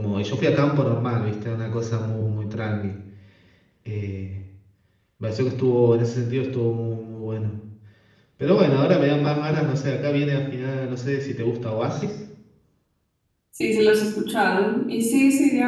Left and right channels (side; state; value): both; identical; correlation 1.00